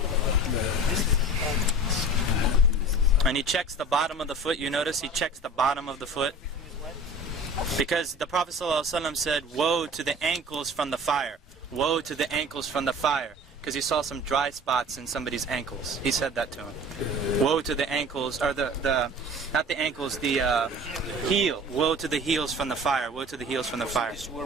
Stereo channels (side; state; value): both; normal; correlation 0.41